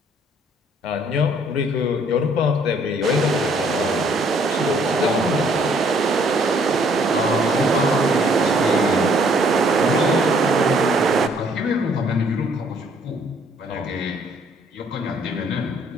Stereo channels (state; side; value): normal; both; correlation 0.63